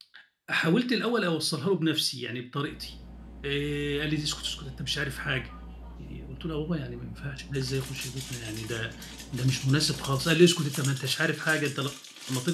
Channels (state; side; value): identical; both; correlation 1.00